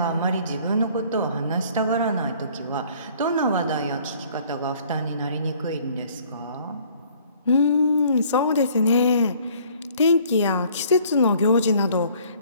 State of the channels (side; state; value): both; inverted; correlation -0.57